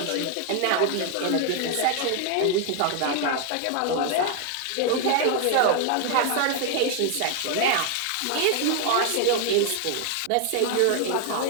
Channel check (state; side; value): different; both; correlation 0.00